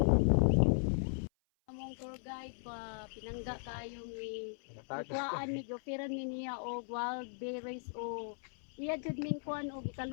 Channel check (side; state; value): right; silent; 53 dB below the other